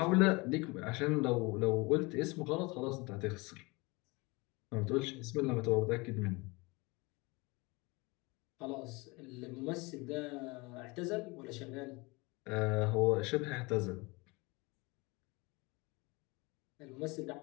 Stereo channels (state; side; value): quieter; right; 25.5 dB